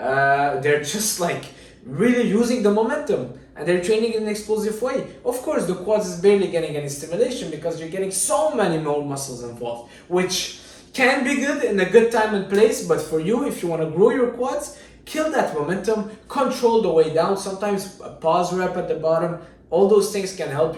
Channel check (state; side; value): identical; both; correlation 1.00